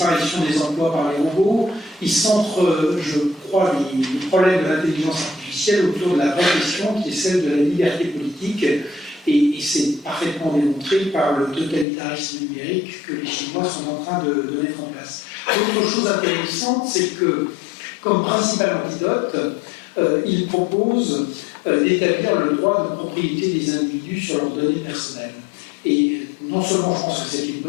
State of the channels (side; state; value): right; drops out; at 11.9 s